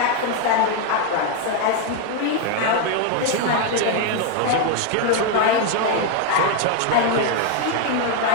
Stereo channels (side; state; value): both; different; correlation 0.01